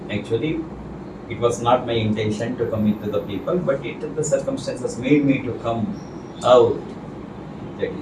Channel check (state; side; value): identical; both; correlation 1.00